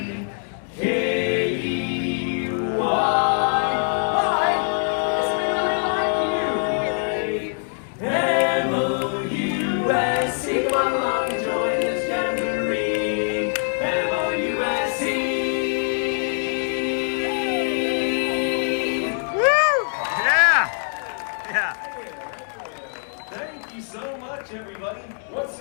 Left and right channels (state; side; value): silent; right; 58 dB below the other